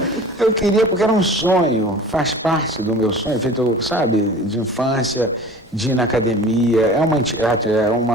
eu queria, porque era um sonho, faz parte do meu sonho, feito, sabe, de infância, de ir na academia,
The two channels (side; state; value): both; normal; correlation 0.41